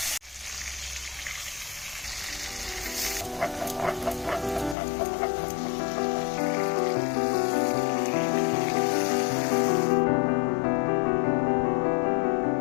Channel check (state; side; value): drops out; right; at 4.8 s